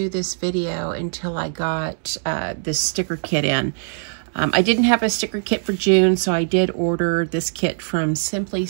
this video until I got this sticker kit in. I didn't have a sticker kit for June, so I did order this kit from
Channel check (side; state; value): left; silent; digital silence